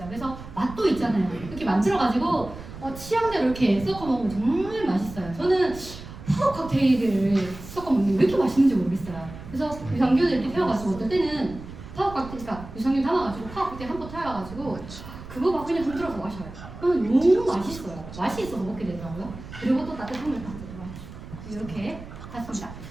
그래서 맛도 있잖아요. 이렇게 만들어가지고 취향대로 이렇게 섞어 먹으면 정말 맛있어요. 저는 파워 칵테일을 섞어 먹는 게 왜 이렇게 맛있는지 모르겠어요. 그래서 유산균을 이렇게 태워가지고 어떨 때는 파워 칵테일, 그러니까 유산균 담아가지고 파워 칵테일 한 번 태워가지고 그거 막 그냥 흔들어서 마셔요. 그러면 너무 맛있어요. 맛이 있어서 먹게 되더라고요. 그리고 또 따뜻한 물 딱 이렇게 했습니다.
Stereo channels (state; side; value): noise; right; rumble, 14 dB below the sound